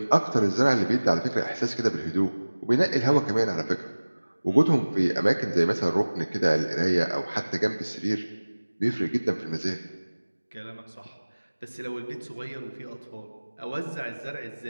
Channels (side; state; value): both; inverted; correlation -1.00